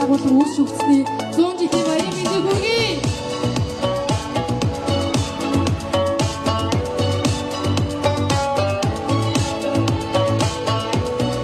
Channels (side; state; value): both; identical; correlation 1.00